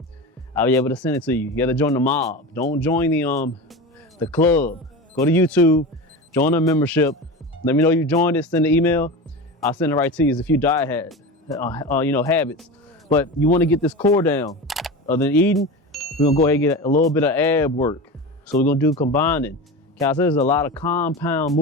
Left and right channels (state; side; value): normal; both; correlation 0.27